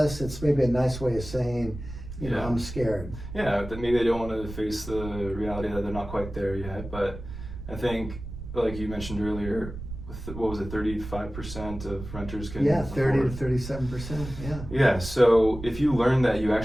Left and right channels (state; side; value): noise; right; rumble, 11 dB below the sound